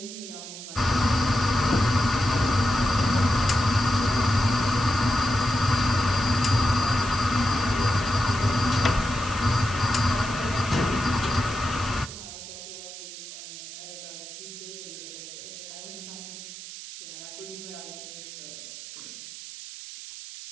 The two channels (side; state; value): right; noise; hiss, 12 dB below the sound